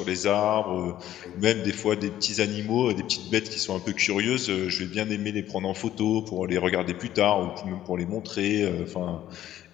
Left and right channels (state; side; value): quieter; right; 12.5 dB